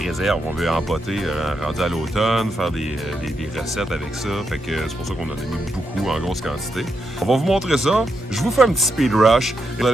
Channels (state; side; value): normal; both; correlation 0.83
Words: On veut empoter rendu à l'automne, faire des recettes avec ça. Fait que c'est pour ça qu'on en a mis beaucoup en grosse quantité. On va vous montrer ça. Je vous fais un petit speed rush. Vous